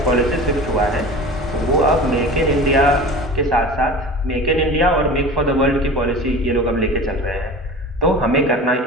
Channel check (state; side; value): normal; both; correlation 0.36